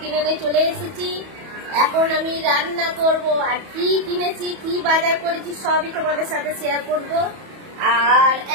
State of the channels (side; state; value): left; late; 31 ms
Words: কিনে নিয়ে চলে এসেছি। এখন আমি রান্না করব, আর কি কিনেছি কি বাজার করেছি সবই তোমাদের সাথে শেয়ার করব। আর